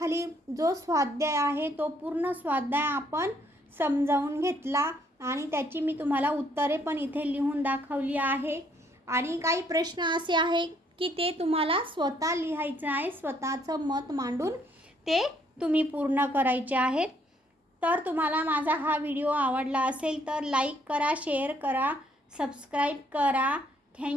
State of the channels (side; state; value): both; normal; correlation 0.68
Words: जो स्वाध्याय आहे तो पूर्ण स्वाध्याय आपण समजावून घेतला आणि त्याची मी तुम्हाला उत्तरे पण इथे लिहून दाखवली आहे. आणि काही प्रश्न असे आहे की ते तुम्हाला स्वतः लिहायचं आहे, स्वतःचं मत मांडून ते तुम्ही पूर्ण करायचे आहेत. तर तुम्हाला माझा हा व्हिडिओ आवडला असेल तर लाईक करा, शेअर करा, सबस्क्राईब करा.